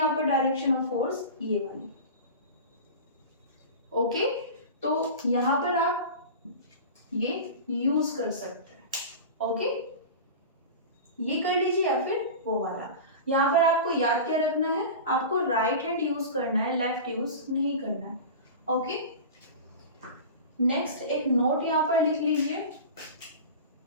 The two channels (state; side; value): inverted; both; correlation -0.31